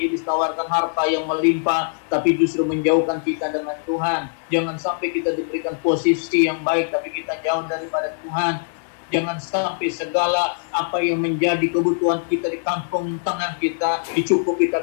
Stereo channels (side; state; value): right; silent; digital silence